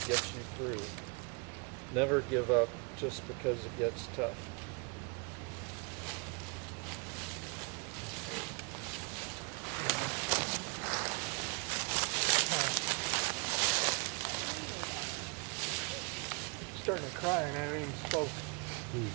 gets you through, Never give up just because it gets tough. Starting to cry and I haven't even spoke.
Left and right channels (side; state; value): left; quieter; 32.9 dB